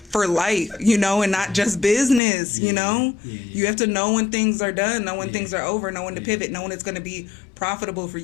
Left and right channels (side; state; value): right; drops out; at 2.2 s